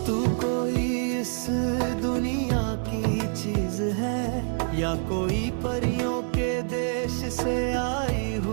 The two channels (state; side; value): silent; left; 61 dB below the other